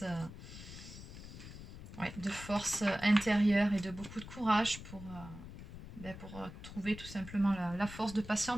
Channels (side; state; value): left; noise; rumble, 13 dB below the sound